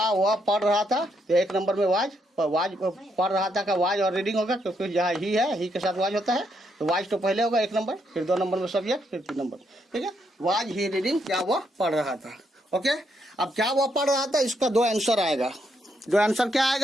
वह पढ़ रहा था, तो 1 नंबर में वाज पढ़ रहा था का वाज और रीडिंग होगा, क्योंकि जहाँ ही है, ही के साथ वाज होता है, तो वाज तो पहले होगा 1 नंबर, फिर 2 नंबर में सब्जेक्ट, फिर 3 नंबर, ठीक है। वाज ही रीडिंग, क्या वह पढ़ रहा था। ओके, अब क्या वह पढ़ रहा था, इसका 2 आंसर आएगा। 2 आंसर क्या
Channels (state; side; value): normal; both; correlation 0.77